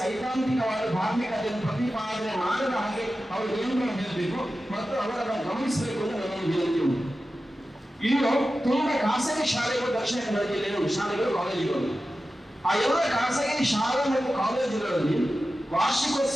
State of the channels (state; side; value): normal; both; correlation 0.93